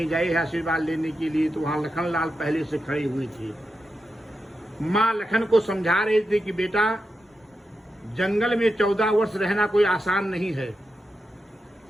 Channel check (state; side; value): normal; both; correlation 0.88